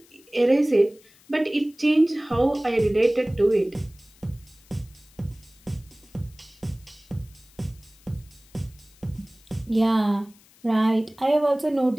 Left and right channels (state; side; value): noise; left; hiss, 28 dB below the sound